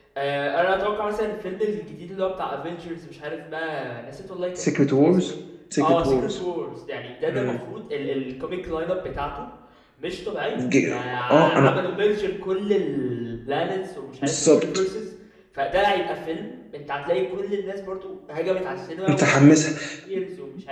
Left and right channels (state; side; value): identical; both; correlation 1.00